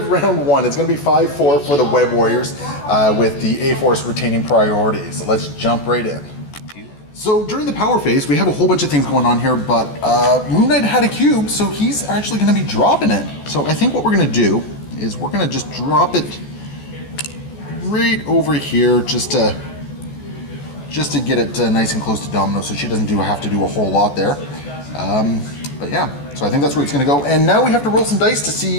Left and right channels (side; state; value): right; late; 14 ms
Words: round 1, it's going to be 5-4 for the Web Warriors, with the A-Force retaining priority. So let's jump right in. So during the power phase, we have a whole bunch of things going on here, but Moon Knight had a cube, so he's actually going to be dropping it. So I think what we're going to do is we're going to just drop it right over here, just to get it nice and close to Domino, so she doesn't have to do a whole lot there. But yeah, so I think that's where it's going to go. And now we have to roll some dice to